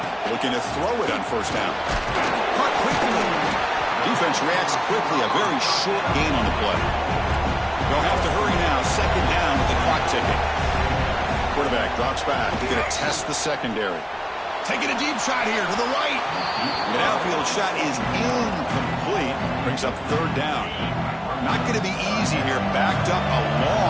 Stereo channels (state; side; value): identical; both; correlation 1.00